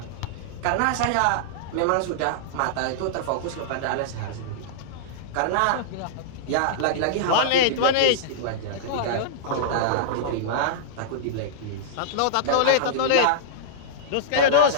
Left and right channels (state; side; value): different; both; correlation -0.02